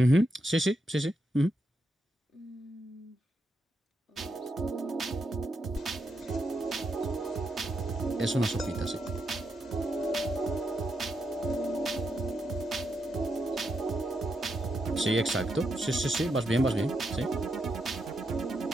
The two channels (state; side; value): normal; both; correlation 0.82